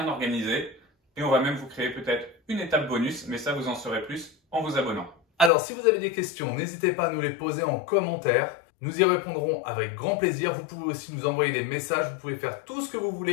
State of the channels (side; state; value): right; drops out; at 5.5 s